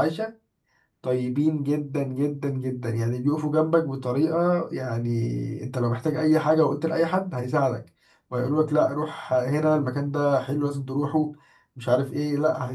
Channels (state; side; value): identical; both; correlation 1.00